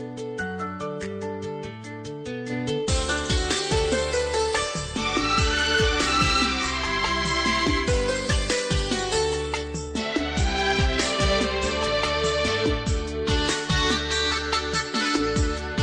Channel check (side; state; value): both; identical; correlation 1.00